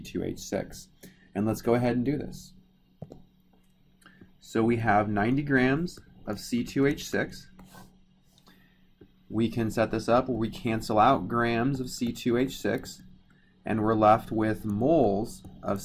And let's go ahead and do this. So we have 90 grams of C2H6. We can set this up where we cancel out grams of C2H6 and we're left with moles of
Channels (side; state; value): both; identical; correlation 1.00